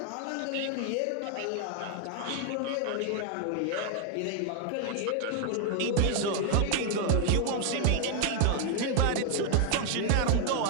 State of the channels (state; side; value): different; both; correlation 0.00